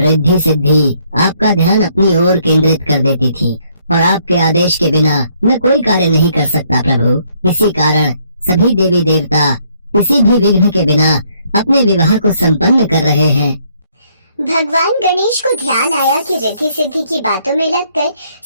सिद्धि आपका ध्यान अपनी ओर केंद्रित कर देती थी, और आपके आदेश के बिना मैं कोई कार्य नहीं कर सकता प्रभु। इसी कारण सभी देवी देवता किसी भी विघ्न के बिना अपने विवाह को संपन्न कर रहे हैं। भगवान गणेश को ध्यान आया कि रिद्धि सिद्धि की बातों में लगकर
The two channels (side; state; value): both; inverted; correlation -0.68